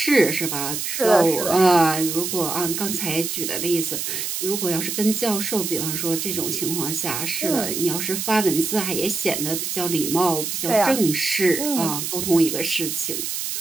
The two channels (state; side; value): noise; right; hiss, 3 dB below the sound